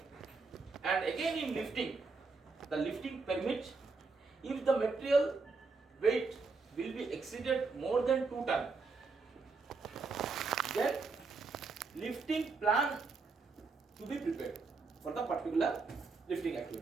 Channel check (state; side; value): quieter; left; 4.3 dB